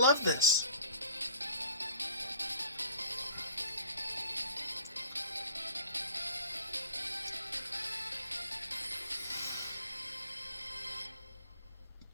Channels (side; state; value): both; inverted; correlation -0.47